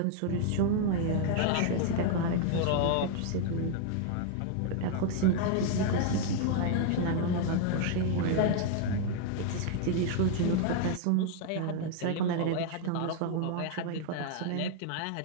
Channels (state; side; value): different; both; correlation 0.00